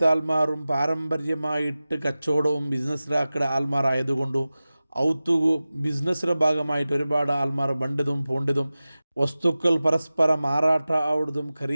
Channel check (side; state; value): both; inverted; correlation -0.96